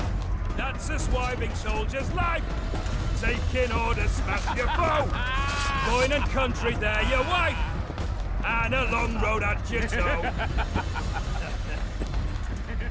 That's a swiving soldier's life. Taking orders, smash your foe. Going and country, there your wife. And a long road at your toe.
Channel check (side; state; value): both; identical; correlation 1.00